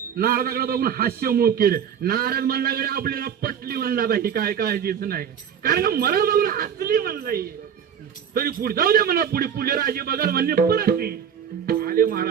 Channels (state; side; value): quieter; left; 8.2 dB